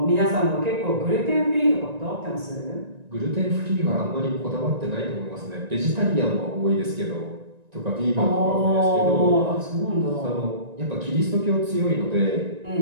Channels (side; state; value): left; late; 1.9 ms